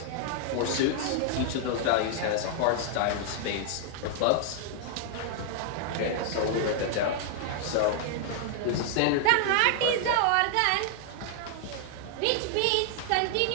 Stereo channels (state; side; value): different; both; correlation 0.00